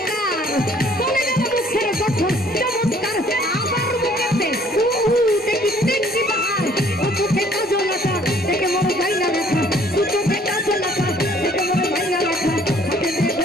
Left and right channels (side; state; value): both; normal; correlation 0.59